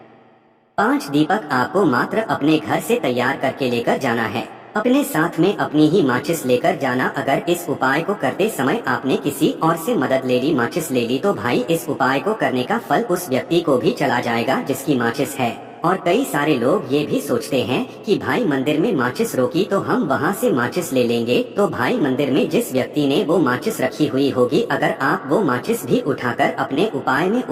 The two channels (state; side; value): identical; both; correlation 1.00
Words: 5 दीपक आपको मात्र अपने घर से तैयार करके लेकर जाना है। अपने साथ में अपनी ही माचिस लेकर जाना। अगर इस उपाय को करते समय आपने किसी और से मदद ले ली, माचिस ले ली, तो भाई इस उपाय को करने का फल उस व्यक्ति को भी चला जाएगा जिसकी माचिस है। और कई सारे लोग ये भी सोचते हैं कि भाई मंदिर में माचिस रोकी तो हम वहाँ से माचिस ले लेंगे। तो भाई मंदिर में जिस व्यक्ति ने वो माचिस रखी हुई होगी, अगर आप वो माचिस भी उठाकर अपने उपाय में